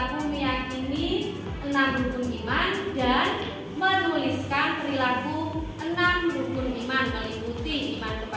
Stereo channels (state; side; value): identical; both; correlation 1.00